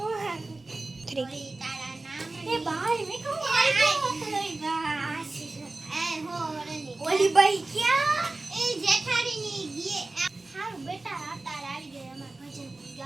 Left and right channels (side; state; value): left; quieter; 3.1 dB